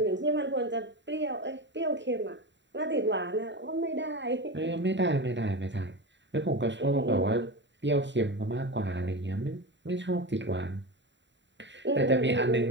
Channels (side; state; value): left; late; 0.52 ms